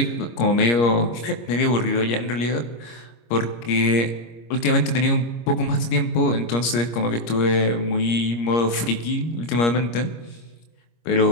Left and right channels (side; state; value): right; late; 25 ms